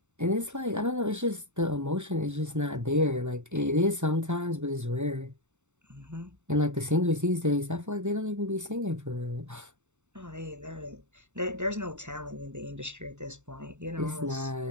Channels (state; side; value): late; left; 0.84 ms